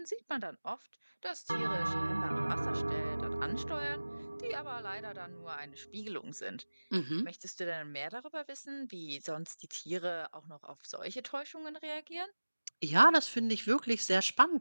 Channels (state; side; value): inverted; both; correlation -1.00